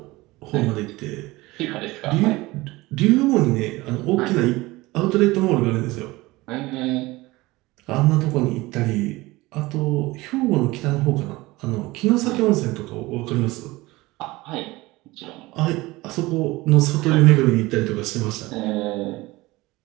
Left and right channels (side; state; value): left; quieter; 20.5 dB